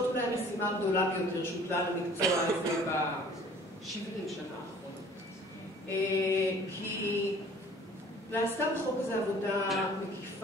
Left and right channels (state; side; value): normal; both; correlation 0.51